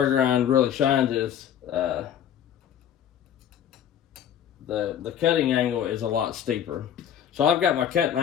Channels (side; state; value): right; quieter; 9.7 dB